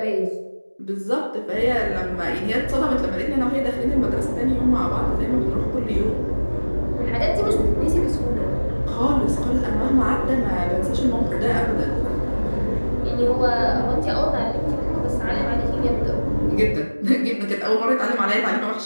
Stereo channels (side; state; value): both; inverted; correlation -1.00